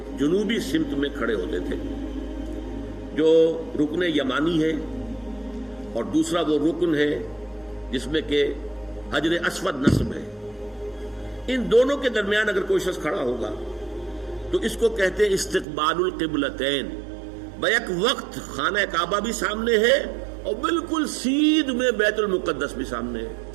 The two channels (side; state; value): left; drops out; at 15.7 s